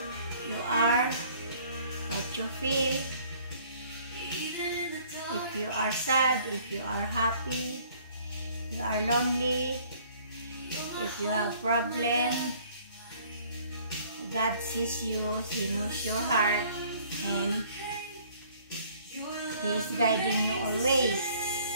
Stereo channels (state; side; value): inverted; both; correlation -0.57